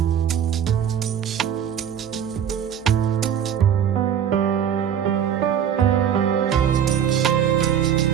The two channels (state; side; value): quieter; left; 8.9 dB